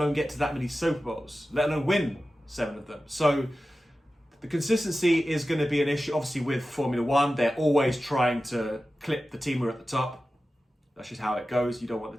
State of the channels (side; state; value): both; normal; correlation 0.94